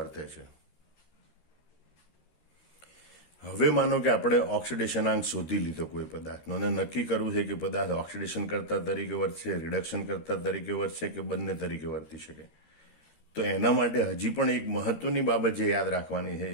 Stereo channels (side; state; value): right; late; 13 ms